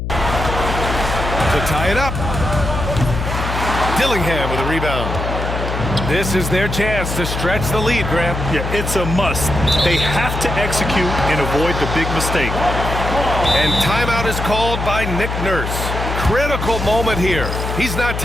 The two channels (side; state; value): left; noise; hum, 4 dB below the sound